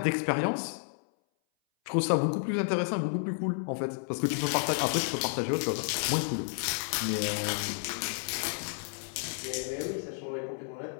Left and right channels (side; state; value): right; silent; 57 dB below the other